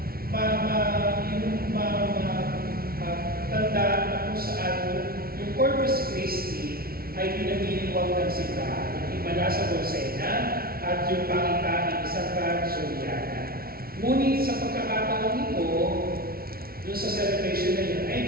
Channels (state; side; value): late; left; 0.44 ms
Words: tandaan na kung saan yung Corpus Christi ay pinamiliwag ng simbahan, yung himala sa Bolsena at yung pangitain ni Santa Juliana. Ngunit sa pagkakataon ito, doon sa celebration na yun,